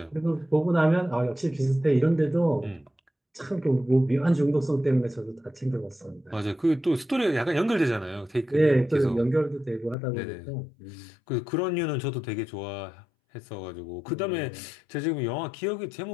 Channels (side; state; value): right; drops out; at 10.0 s